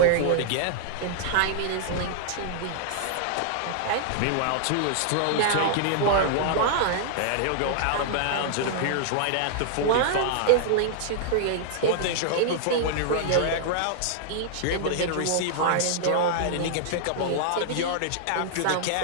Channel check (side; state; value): both; different; correlation -0.01